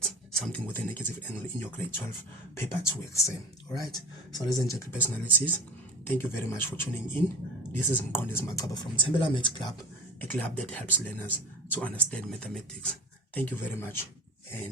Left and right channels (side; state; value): both; normal; correlation 0.32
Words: something with a negative angle in your grade 12 paper 2 exam. All right. So ladies and gentlemen, personalities, thank you very much for tuning in. This is Mkondes Makaba from Tembela Maths Club, a club that helps learners to understand mathematics. Thank you very much,